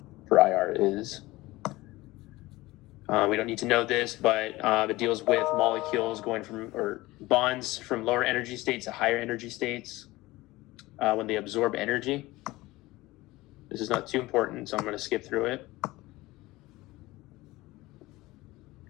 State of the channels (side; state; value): right; quieter; 19.5 dB